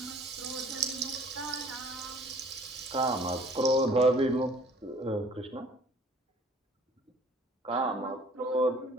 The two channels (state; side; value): normal; both; correlation 0.54